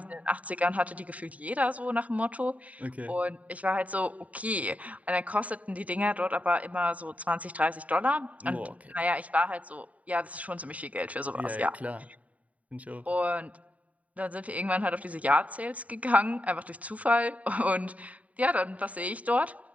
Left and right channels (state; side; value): late; left; 0.069 ms